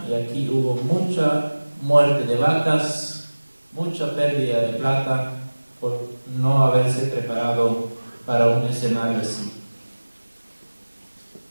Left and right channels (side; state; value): both; inverted; correlation -1.00